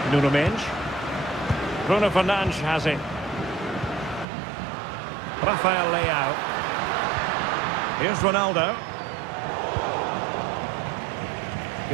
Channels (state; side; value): drops out; left; at 4.2 s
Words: Nuno Mendes. Bruno Fernandes has it. Rafael Leao. Here's Ronaldo.